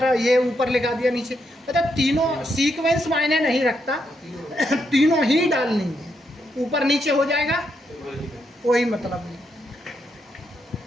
ये ऊपर लिखा दिया नीचे, मतलब तीनों सीक्वेंस मायने नहीं रखता। तीनों ही डालनी है, ऊपर नीचे हो जाएगा कोई मतलब नहीं,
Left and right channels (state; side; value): normal; both; correlation 0.80